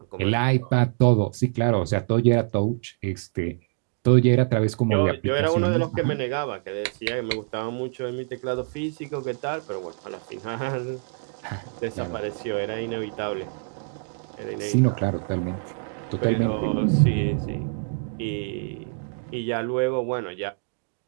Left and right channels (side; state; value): left; silent; digital silence